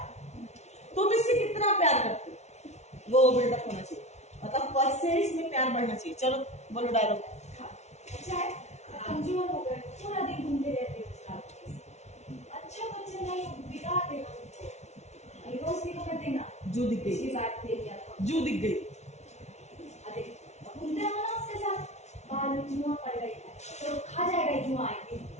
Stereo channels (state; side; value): late; right; 0.32 ms